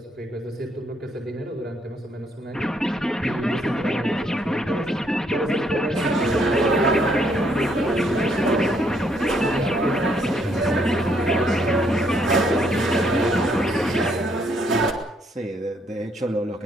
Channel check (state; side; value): normal; both; correlation 0.70